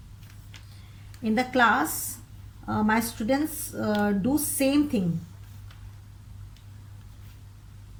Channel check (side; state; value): both; identical; correlation 1.00